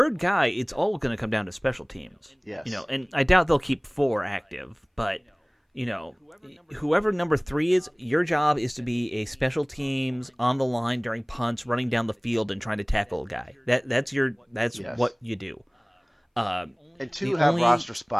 guy, it's all going to come down to special teams. Yes. And I doubt they'll keep 4 active, but, whoever number 3 is, your job is to be a special teams on the line during punts, running down the field and trying to tackle a guy. That's what you do. And 2 have roster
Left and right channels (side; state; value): both; identical; correlation 1.00